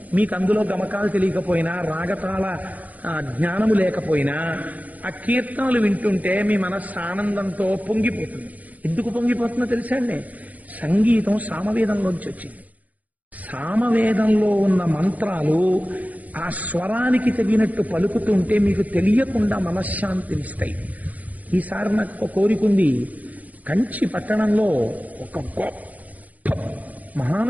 మీకు అందులో గమకాలు తెలియకపోయినా, రాగతాల జ్ఞానము లేకపోయినా, ఆ కీర్తనలు వింటుంటే మీ మనస్సు ఆనందంతో పొంగిపోతుంది. ఎందుకు పొంగిపోతుందో తెలుసా అండి? సంగీతం సామవేదంలోంచి వచ్చింది. సామవేదంలో ఉన్న మంత్రాలు ఆ స్వరానికి తగినట్టు పలుకుతుంటే మీకు తెలియకుండా మనశ్శాంతినిస్తాయి. ఈసారి నాకు ఒక కోరికుంది. కంచి పట్టణంలో ఒక గొప్ప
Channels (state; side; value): late; left; 0.076 ms